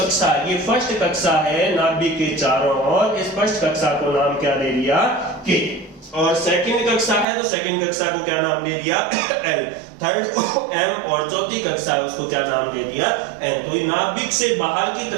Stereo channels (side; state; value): left; drops out; at 7.2 s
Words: ये फर्स्ट कक्षा है नाभिक के चारों ओर, इस फर्स्ट कक्षा को नाम क्या दे दिया, के। और सेकंड कक्षा है तो सेकंड कक्षा को क्या नाम दे दिया, एल। थर्ड को एम और चौथी कक्षा है उसको क्या नाम दे दिया, एन। तो ये नाभिक से बाहर की